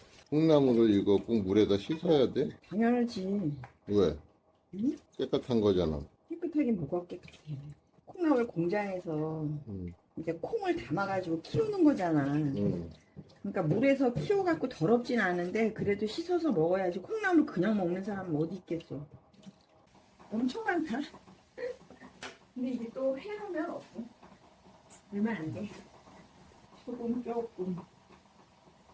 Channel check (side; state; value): both; identical; correlation 1.00